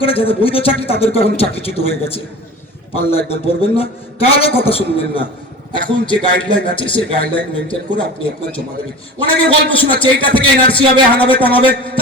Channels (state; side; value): normal; both; correlation 0.35